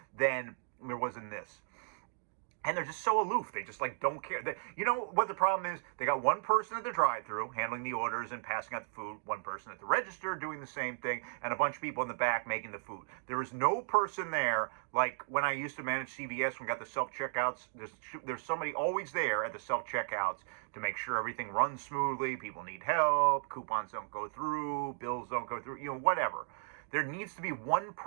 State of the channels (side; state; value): left; silent; digital silence